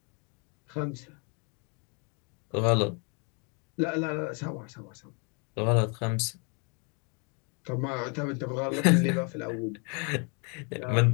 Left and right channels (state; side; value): quieter; right; 35.7 dB